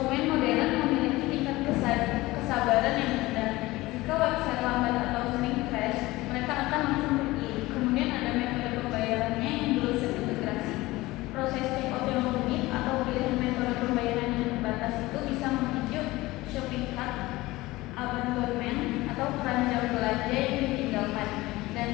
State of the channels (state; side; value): quieter; right; 19.4 dB